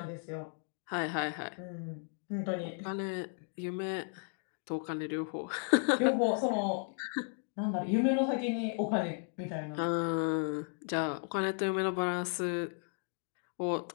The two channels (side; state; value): right; silent; 55 dB below the other